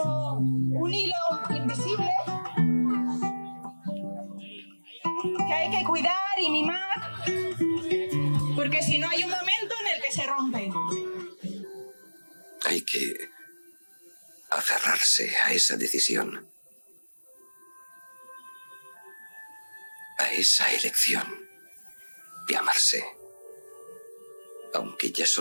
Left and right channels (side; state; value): both; inverted; correlation -1.00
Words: un hilo invisible que hay que cuidar y mimar, porque si no hay un momento en el que se rompe. Hay que aferrarse a esa decisión, a esa elección de amarse, aunque ya